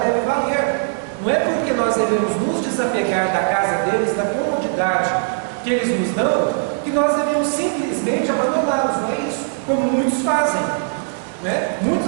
deve valer. Não é porque nós devemos nos desapegar da casa deles, da comodidade que eles nos dão, que nós devemos simplesmente abandoná-los. Não é isso? Como muitos fazem.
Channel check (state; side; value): silent; left; 66 dB below the other